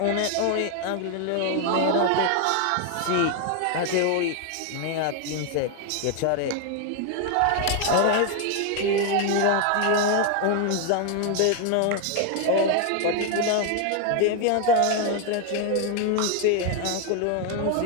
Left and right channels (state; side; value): different; both; correlation 0.01